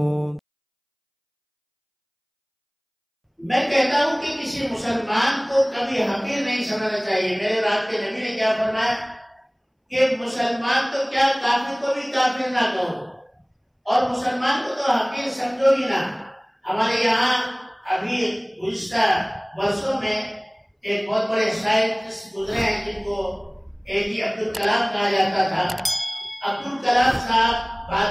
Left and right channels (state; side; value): identical; both; correlation 1.00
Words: میں کہتا ہوں کہ کسی مسلمان کو کبھی حقیر نہیں سمجھنا چاہیے۔ میرے رات کے نبی نے کیا فرمایا کہ مسلمان تو کیا کافر کو بھی کافر نہ کہو اور مسلمان کو تو حقیر سمجھو ہی نہ۔ ہمارے یہاں ابھی گزشتہ برسوں میں ایک بہت بڑے سائنٹسٹ گزرے ہیں جن کو APJ عبدالکلام کہا جاتا تھا۔ عبدالکلام صاحب